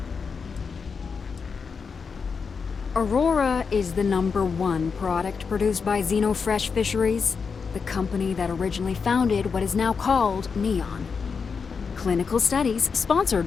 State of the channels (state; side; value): quieter; right; 5.5 dB